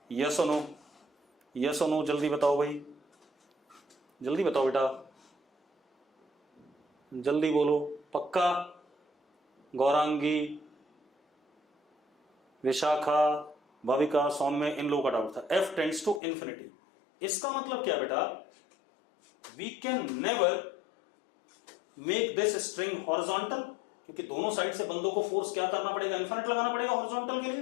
yes or no? yes or no? जल्दी बताओ भाई, जल्दी बताओ बेटा, जल्दी बोलो। पक्का? गौरांगी, विशाखा, भाविका, सौम्य, इन लोगों का डाउट था। f टेंड्स टू इंफिनिटी, इसका मतलब क्या बेटा? We can never make this string horizontal, क्योंकि दोनों साइड से बंदों को फोर्स क्या करना पड़ेगा? इन्फिनिट लगाना पड़ेगा हॉरिजॉन्टल के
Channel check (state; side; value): drops out; right; at 16.2 s